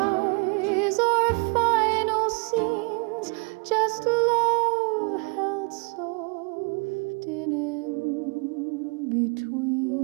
or final scenes, just love held soft in between.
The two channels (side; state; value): left; quieter; 34.1 dB